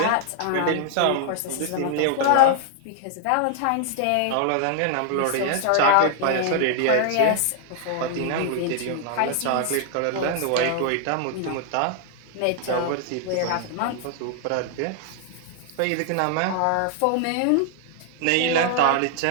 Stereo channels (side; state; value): both; different; correlation 0.00